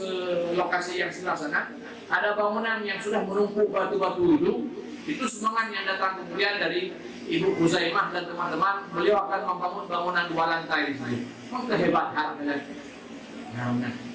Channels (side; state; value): both; identical; correlation 1.00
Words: lokasi yang sebelah sana, ada bangunan yang sudah menumpuk batu-batu itu semangat yang datang kemudian dari Ibu Huzaimah dan teman-teman, beliau akan membangun bangunan 2 lantai di sini. Memang kehebatan